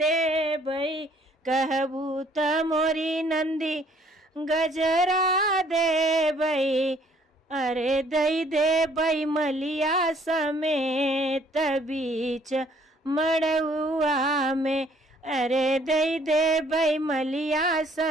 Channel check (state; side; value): normal; both; correlation 0.61